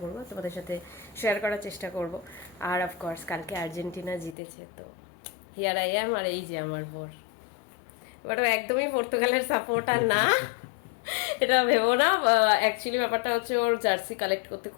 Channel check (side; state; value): right; drops out; at 4.4 s